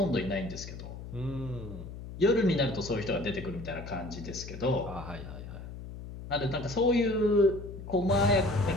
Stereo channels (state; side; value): noise; left; hum, 11 dB below the sound